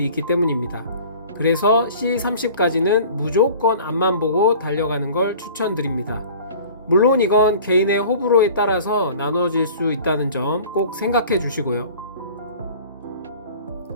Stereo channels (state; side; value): inverted; both; correlation -0.45